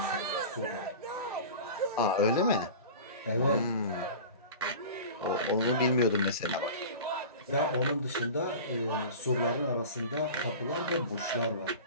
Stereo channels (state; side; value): inverted; both; correlation -0.35